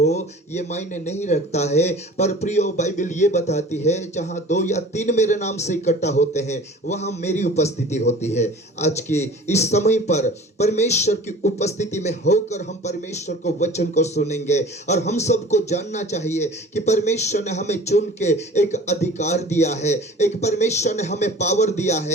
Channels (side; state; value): both; normal; correlation 0.43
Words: ये मायने नहीं रखता है। पर प्रियो, बाइबल ये बताती है जहां 2 या 3 मेरे नाम से इकट्ठा होते हैं वहां मेरी उपस्थिति होती है। आज के इस समय पर परमेश्वर की उपस्थिति में होकर हम परमेश्वर को वचन को सुनेंगे। और हम सबको जानना चाहिए कि परमेश्वर ने हमें चुन के एक अधिकार दिया है, एक परमेश्वर ने हमें पावर दिया